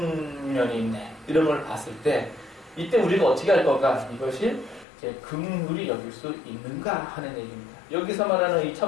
면이 있네, 이런 걸 봤을 때 이때 우리가 어떻게 할 건가? 이것이 이제 긍휼히 여길 수 있는가 하는 얘기입니다. 여기서 말하는 이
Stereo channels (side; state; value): right; drops out; at 4.9 s